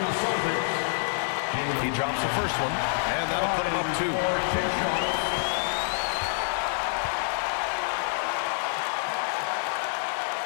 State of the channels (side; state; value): right; silent; digital silence